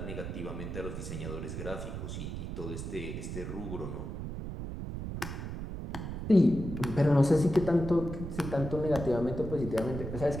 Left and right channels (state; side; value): noise; right; rumble, 6 dB below the sound